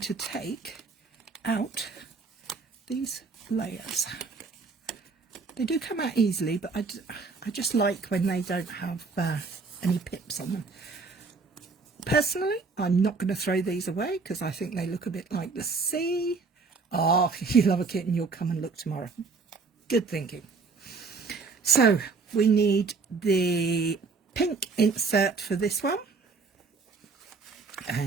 take out these layers. They do come out easily, but I just like when they don't have any pips on them. Personally, I'm not going to throw these away because I think they look a bit like the sea. Oh, if you love a kit, and you'll come and look tomorrow. Good thinking. So we need the pink insert for this one.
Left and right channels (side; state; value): left; quieter; 4.5 dB